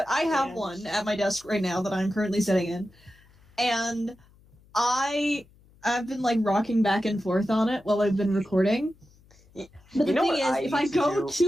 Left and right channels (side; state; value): left; noise; hum, 29 dB below the sound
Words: I have one at my desk right now that I'm currently sitting in, and I've been like rocking back and forth on it while I've been recording. But the thing is, if I go